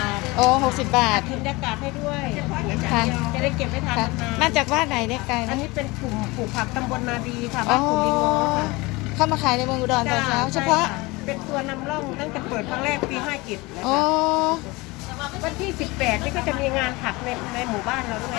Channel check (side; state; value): right; quieter; 23.3 dB